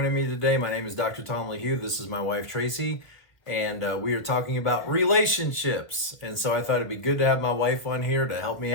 me today. My name is Dr. Tom LaHue. This is my wife Traci, and we are talking about relationships. And so I thought it'd be good to have my wife on here to help me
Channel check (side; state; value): right; late; 1.6 ms